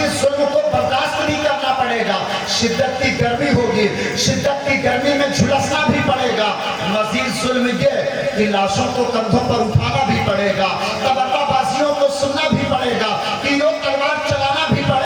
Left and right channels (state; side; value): identical; both; correlation 1.00